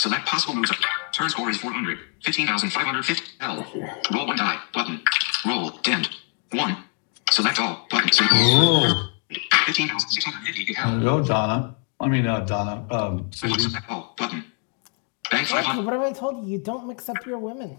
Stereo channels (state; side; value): quieter; right; 33.4 dB